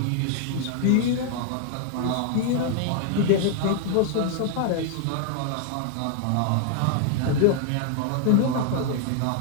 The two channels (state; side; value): different; both; correlation 0.00